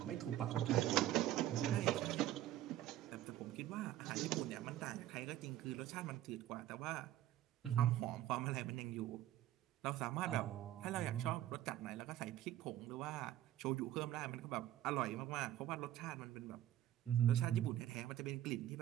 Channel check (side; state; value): left; quieter; 13.1 dB